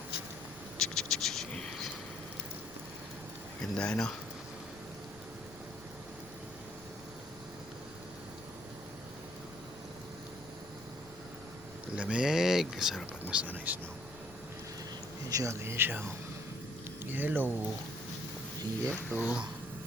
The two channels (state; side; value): noise; left; rumble, 20 dB below the sound